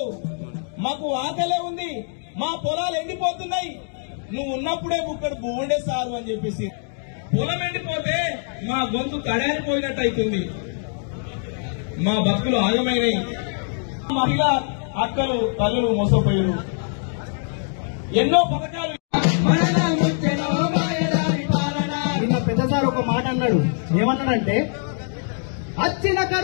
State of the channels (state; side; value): silent; right; 63 dB below the other